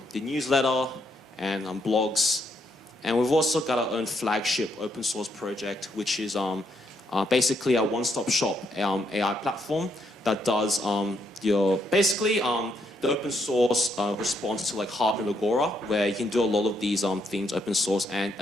newsletter and blogs. And we've also got our own flagship open source project, which is basically a one-stop shop AI platform that does your basically the open source response to like Harvard and Agora, where you can do a lot of these things open source. And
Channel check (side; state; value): both; normal; correlation 0.76